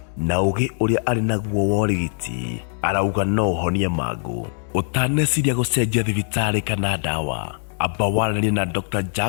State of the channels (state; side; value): silent; right; 64 dB below the other